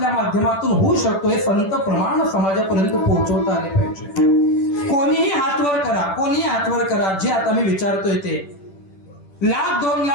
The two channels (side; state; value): right; late; 10 ms